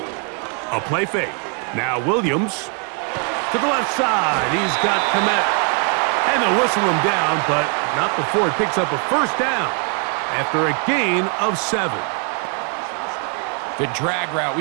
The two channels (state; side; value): quieter; left; 37.7 dB